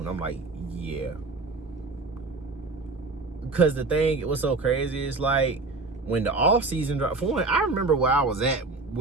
I'm like, yeah. Because the thing, what's so crazy is, like, when the off season dropped, for one, I remember where I was at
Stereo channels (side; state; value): left; quieter; 3.6 dB